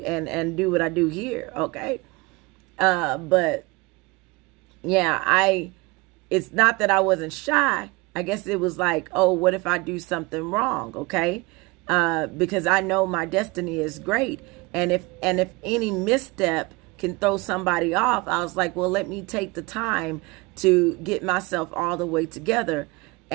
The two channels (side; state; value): left; quieter; 25.0 dB